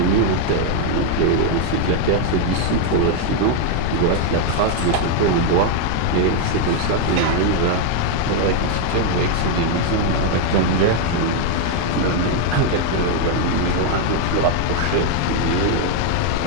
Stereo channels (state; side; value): different; both; correlation 0.00